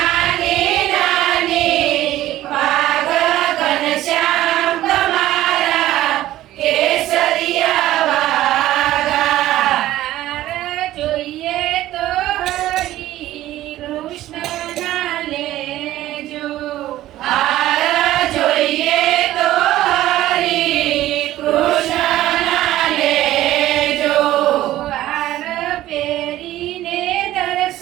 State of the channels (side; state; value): left; quieter; 14.6 dB